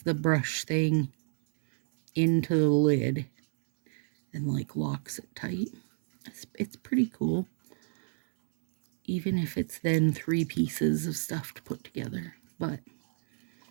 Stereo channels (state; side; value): silent; left; digital silence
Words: the brush thing into the lid and like locks it tight. It's pretty cool. Even if it's then 3 pieces of stuff to put together. But